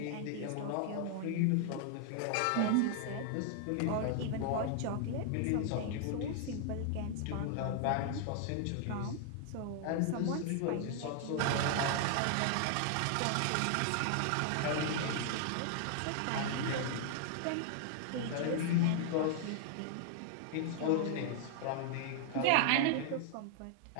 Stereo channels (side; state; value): both; different; correlation 0.00